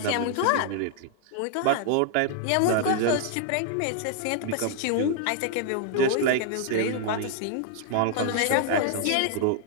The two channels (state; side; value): different; both; correlation 0.00